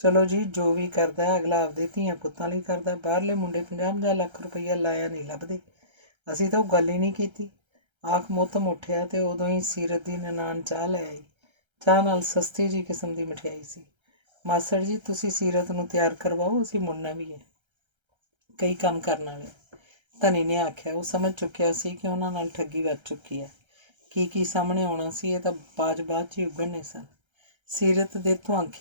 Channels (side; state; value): left; late; 1.3 ms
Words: ਚਲੋ ਜੀ, ਜੋ ਵੀ ਕਰਦਾ ਅਗਲਾ ਆਪਦੇ ਧੀਆਂ ਪੁੱਤਾਂ ਲਈ ਕਰਦਾ। ਬਾਹਰਲੇ ਮੁੰਡੇ 50-50 ਲੱਖ ਰੁਪਈਆ ਲਾਇਆ ਨਹੀਂ ਲੱਭਦੇ। ਅਸੀਂ ਤਾਂ ਉਹ ਗੱਲ ਹੀ ਨਹੀਂ ਕੀਤੀ। ਆਖ ਮੋਤਮ ਉੱਠਿਆ ਤੇ ਉਦੋਂ ਹੀ ਸੀਰਤ ਦੀ ਨਨਾਣ ਚਾਹ ਲੈ ਆਈ। ਚਾਹ ਨਾਲ ਸਸਤੀ ਜਿਹੀ ਕਿਸਮ ਦੀ ਮਠਿਆਈ ਸੀ। ਮਾਸੜ ਜੀ, ਤੁਸੀਂ ਸੀਰਤ ਨੂੰ ਤਿਆਰ ਕਰਵਾਓ, ਅਸੀਂ ਮੁੜਨਾ ਵੀ ਹੈ, ਕਈ ਕੰਮ ਕਰਨ ਵਾਲੇ। ਧਨੀ ਨੇ ਆਖਿਆ। ਉਹ ਸਮਝ ਚੁੱਕਿਆ ਸੀ ਕਿ ਉਹਨਾਂ ਨਾਲ ਠੱਗੀ ਵੱਜ ਚੁੱਕੀ ਹੈ। ਕੀ ਸਾਹਮਣੇ ਆਉਣਾ ਸੀ, ਇਹ ਤਾਂ ਬਾਅਦ 'ਚ ਹੀ ਉਗੜਨੇ ਸਨ। ਸੀਰਤ ਦੇ